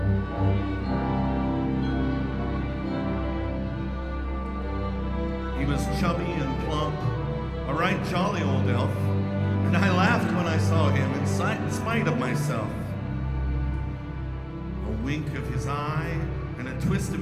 He was chubby and plump, a right jolly old elf, and I laughed when I saw him in spite of myself. A wink of his eye and a twist of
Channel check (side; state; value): both; identical; correlation 1.00